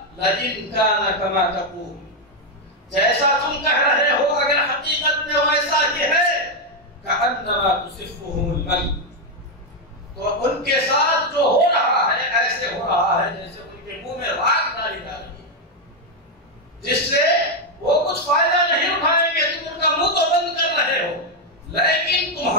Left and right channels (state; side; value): normal; both; correlation 0.03